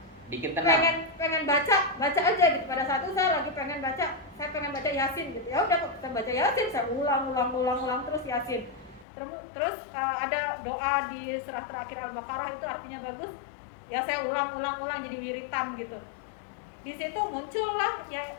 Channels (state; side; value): drops out; right; at 9.1 s